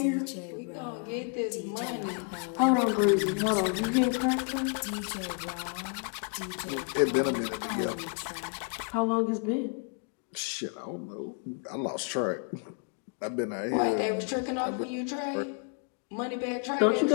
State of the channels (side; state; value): right; quieter; 35.7 dB